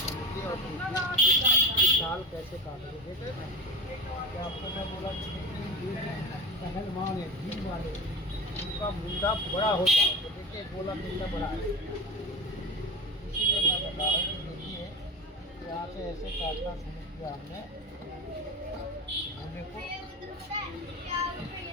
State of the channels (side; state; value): both; normal; correlation 0.26